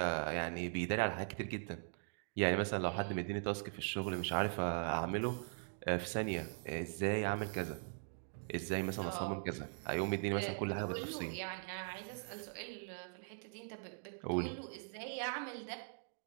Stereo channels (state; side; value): silent; left; digital silence